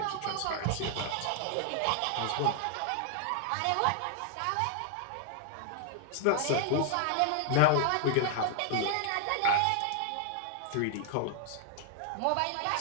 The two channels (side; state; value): both; different; correlation 0.00